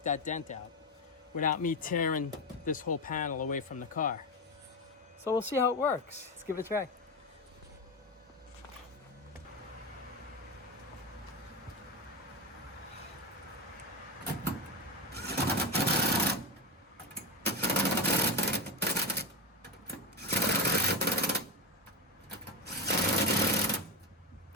that dent out without me tearing this whole panel away from the car. So we'll see how it works. Let's give it a try.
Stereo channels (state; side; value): normal; both; correlation 0.17